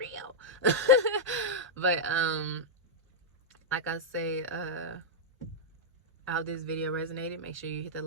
But like I say, I hope this video resonated. Make sure you hit the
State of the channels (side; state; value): both; normal; correlation -0.06